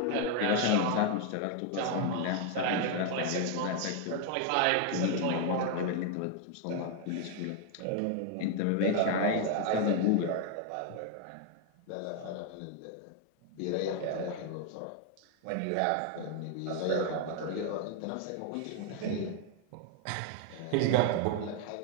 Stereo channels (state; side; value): different; both; correlation 0.01